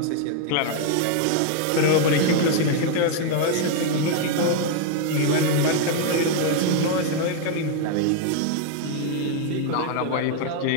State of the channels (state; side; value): different; both; correlation 0.00